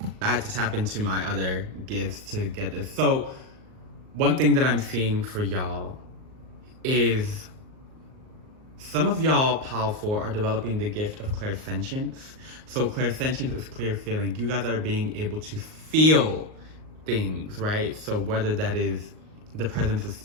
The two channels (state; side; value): late; left; 38 ms